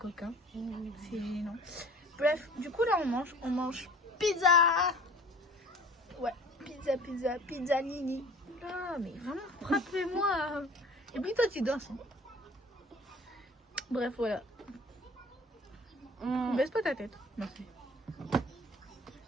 C'est gênant. Bref, du coup, là, on mange pizza. Ouais, pizza nini. Oula, mais vraiment, frappez-moi. Et puis toi, tu danses. Hein. Bref, voilà. Baisse pas ta tête. Merci.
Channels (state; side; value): normal; both; correlation 0.47